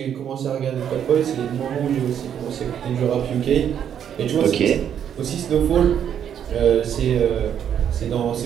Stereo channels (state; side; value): quieter; left; 9.0 dB